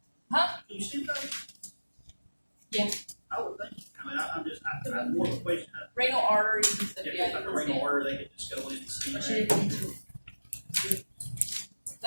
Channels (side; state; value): both; inverted; correlation -1.00